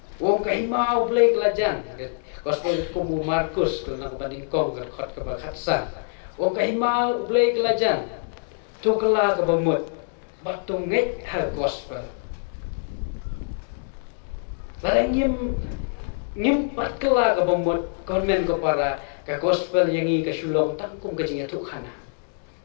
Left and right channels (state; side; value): silent; right; digital silence